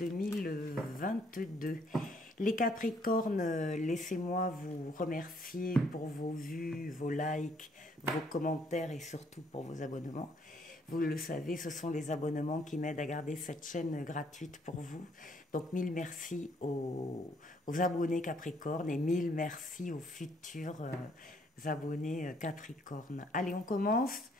Les Capricornes, laissez-moi vous remercier pour vos vues, vos likes, vos commentaires et surtout pour vos abonnements. Vous le savez, ce sont les abonnements qui m'aident à garder cette chaîne gratuite pour vous. Donc, mille merci aux abonnés Capricorne et mille merci aux futurs abonnés Capricorne. Allez, on commence.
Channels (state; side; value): normal; both; correlation 0.66